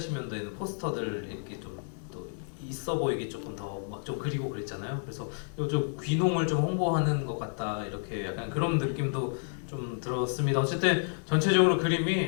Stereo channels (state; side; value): silent; right; digital silence